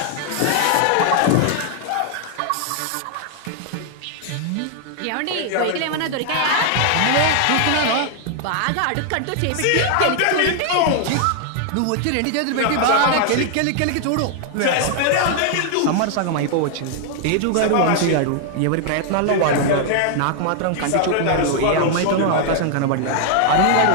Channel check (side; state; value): both; different; correlation 0.00